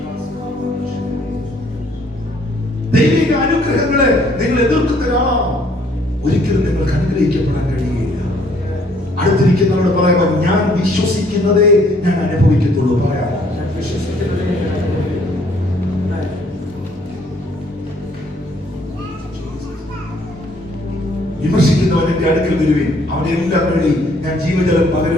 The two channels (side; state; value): both; normal; correlation 0.63